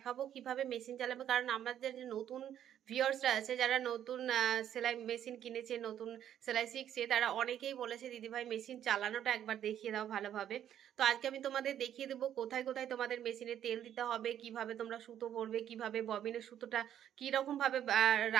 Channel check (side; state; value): left; quieter; 10.4 dB